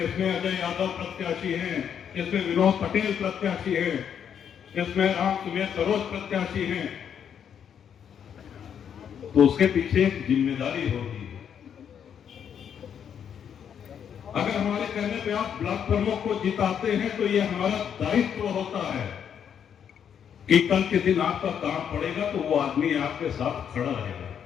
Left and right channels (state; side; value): quieter; right; 8.3 dB